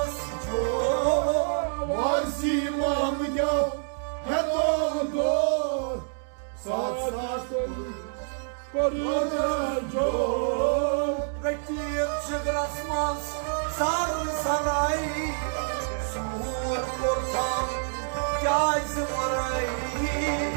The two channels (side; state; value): left; silent; 60 dB below the other